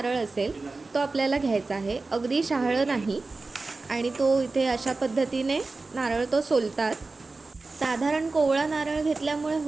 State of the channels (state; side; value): quieter; left; 3.6 dB